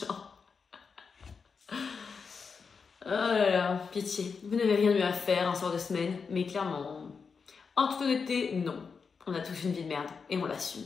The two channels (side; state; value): right; quieter; 5.5 dB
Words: Oh là là, pitié. Vous n'avez rien de mieux à faire un soir de semaine, mais clairement, en toute honnêteté, non. On a tous une vie de merde, et on l'assume.